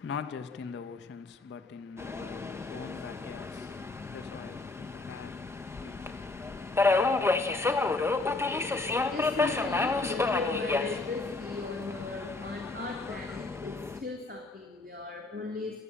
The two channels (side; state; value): right; quieter; 3.3 dB